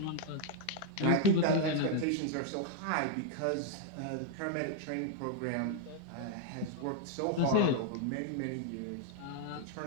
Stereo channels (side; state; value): both; different; correlation 0.00